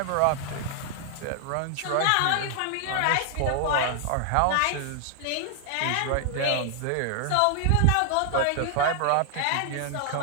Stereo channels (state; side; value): different; both; correlation 0.00